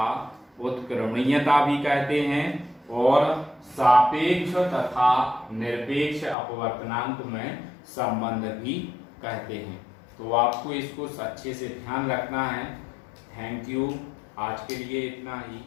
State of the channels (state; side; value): drops out; right; at 6.4 s